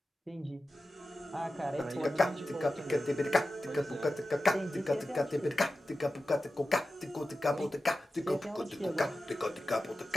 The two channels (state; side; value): normal; both; correlation 0.93